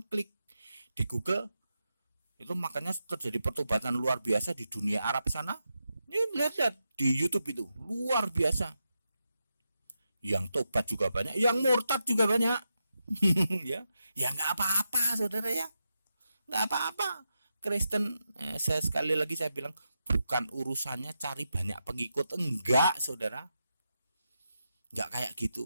klik di Google itu, makanya terjadi pertobatan luar biasa di dunia Arab sana. Ini lihat di YouTube itu luar biasa. Yang tobat juga banyak, yang murtad juga banyak. ya nggak apa-apa saudara ya, nggak apa-apa. Kristen, sekali lagi saya bilang, bukan urusannya cari banyak pengikut, enggak saudara. Nggak kayak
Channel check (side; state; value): both; inverted; correlation -0.87